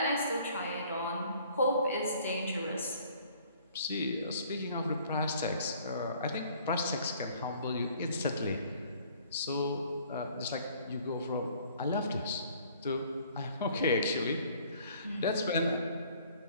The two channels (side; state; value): both; inverted; correlation -0.57